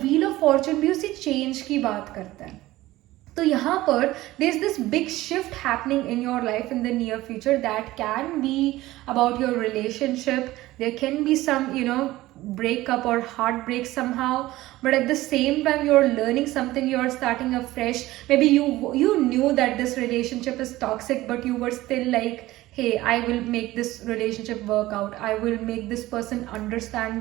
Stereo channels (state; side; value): quieter; left; 17.1 dB